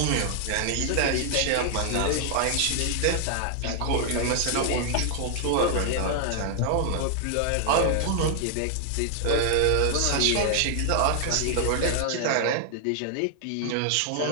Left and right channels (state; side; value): different; both; correlation 0.00